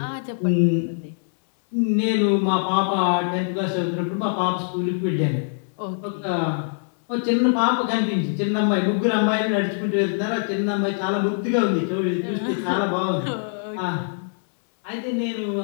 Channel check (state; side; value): silent; right; digital silence